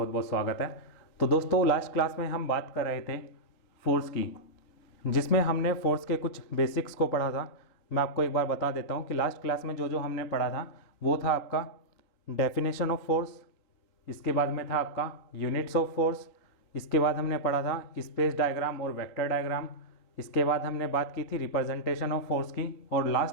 बहुत स्वागत है। तो दोस्तों, लास्ट क्लास में हम बात कर रहे थे फोर्स की, जिसमें हमने फोर्स के कुछ बेसिक्स को पढ़ा था। मैं आपको एक बार बता देता हूं कि लास्ट क्लास में जो जो हमने पढ़ा था वो था आपका डेफिनेशन ऑफ फोर्स, इसके बाद में था आपका यूनिट्स ऑफ फोर्स, इसके बाद हमने पढ़ा था स्पेस डायग्राम और वेक्टर डायग्राम, इसके बाद हमने बात की थी रिप्रेजेंटेशन ऑफ फोर्स की, और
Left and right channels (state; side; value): late; right; 4.0 ms